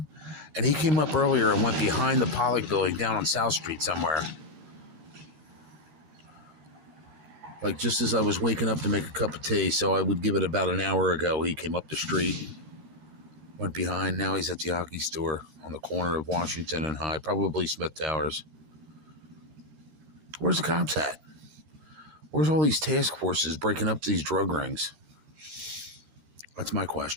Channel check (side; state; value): left; late; 13 ms